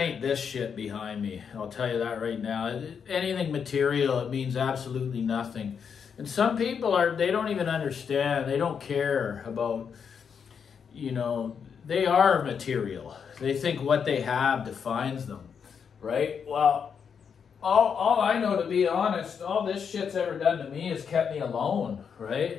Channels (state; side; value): quieter; right; 6.8 dB